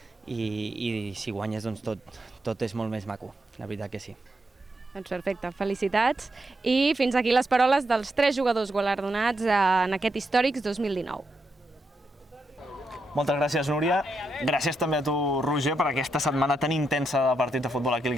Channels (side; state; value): both; normal; correlation 0.82